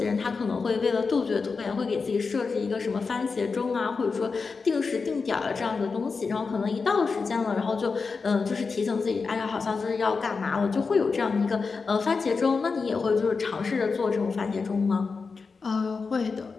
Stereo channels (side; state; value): right; quieter; 4.7 dB